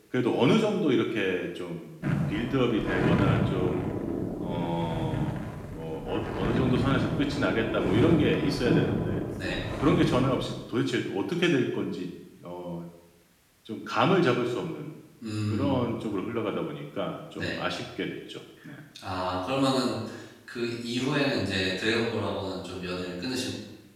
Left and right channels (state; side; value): identical; both; correlation 1.00